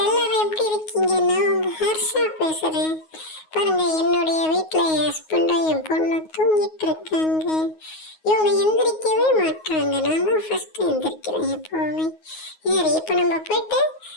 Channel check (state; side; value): late; right; 9.4 ms